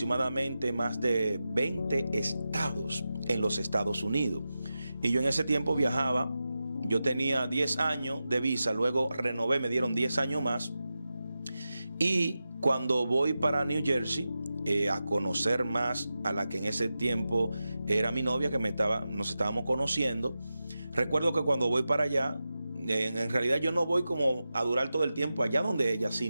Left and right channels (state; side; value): inverted; both; correlation -0.92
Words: más de 20 estados en los Estados Unidos. Y yo en ese tiempo viajaba. Yo tenía 10 años de visa, luego renové, me dieron 10 años más. Y cuando voy para New Jersey, a conocer más a la que en ese tiempo era mi novia, que nos estábamos conociendo, recuerdo que cuando voy para allá, en realidad yo no voy como a durar todo el tiempo allá donde ella,